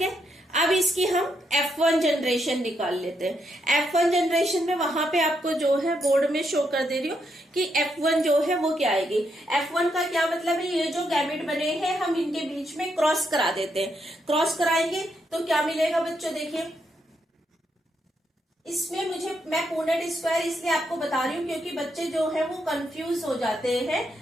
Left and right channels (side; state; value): both; normal; correlation 0.79